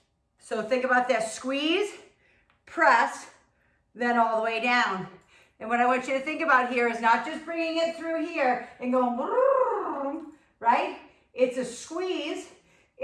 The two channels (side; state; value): both; identical; correlation 1.00